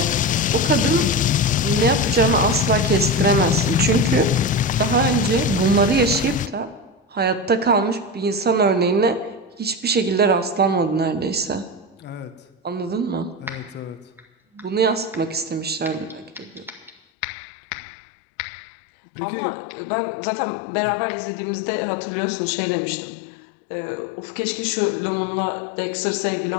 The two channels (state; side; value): drops out; right; at 16.9 s